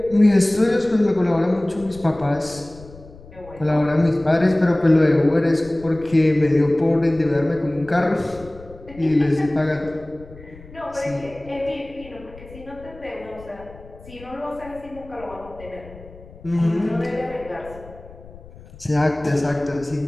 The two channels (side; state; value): left; noise; rumble, 19 dB below the sound